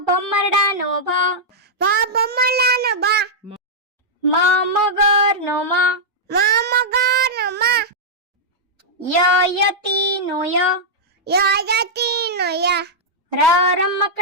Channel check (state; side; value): normal; both; correlation -0.07